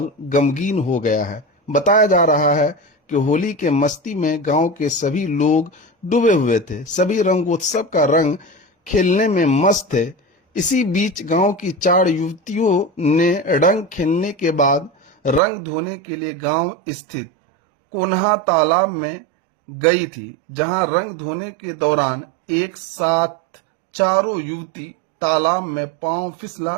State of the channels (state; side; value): drops out; left; at 15.4 s